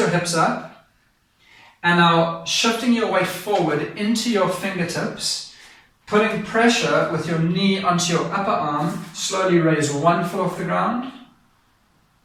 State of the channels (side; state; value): both; identical; correlation 1.00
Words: hips up. And now shifting your weight forward into your fingertips, putting pressure with your knee onto your upper arm, slowly raise one foot off the ground.